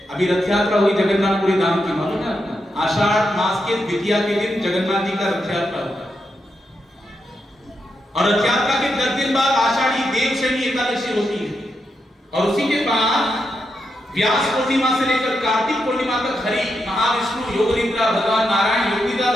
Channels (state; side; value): normal; both; correlation 0.84